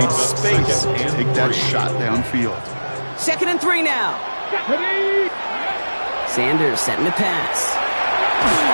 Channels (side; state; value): both; inverted; correlation -1.00